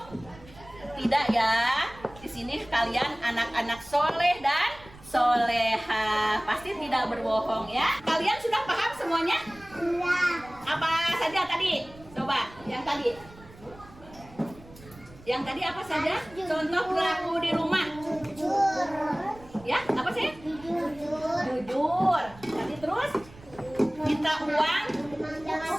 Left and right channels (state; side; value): noise; right; rumble, 21 dB below the sound